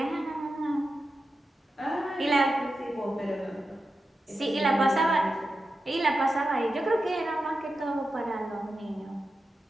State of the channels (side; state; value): both; normal; correlation 0.91